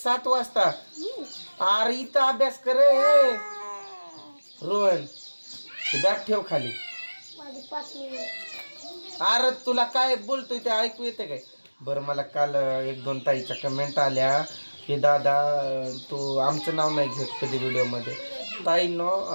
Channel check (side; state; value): both; inverted; correlation -1.00